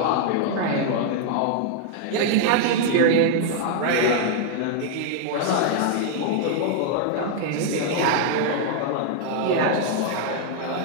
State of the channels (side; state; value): both; different; correlation 0.00